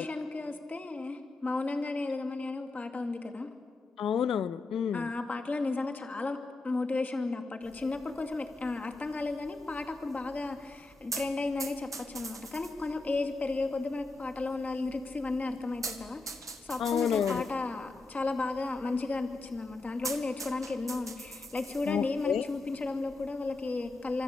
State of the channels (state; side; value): quieter; right; 3.5 dB